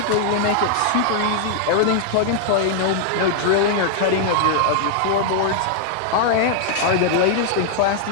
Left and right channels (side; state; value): both; different; correlation -0.01